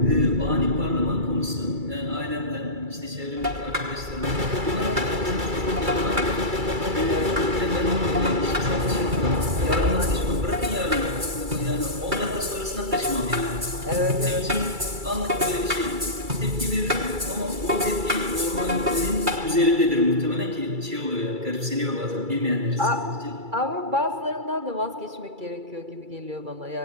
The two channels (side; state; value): left; late; 2.3 ms